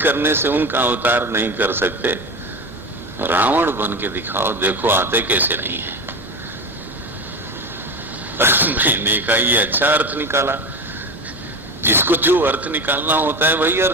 से उनका अवतार नहीं कर सकते, रावण बन के दिखाओ, देखो आते कैसे नहीं है। मैंने कहा ये अच्छा अर्थ निकाला। जिसको जो अर्थ निकालना होता है वही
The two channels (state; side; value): normal; both; correlation 0.25